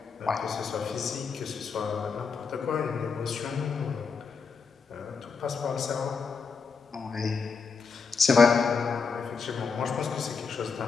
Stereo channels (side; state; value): right; quieter; 5.3 dB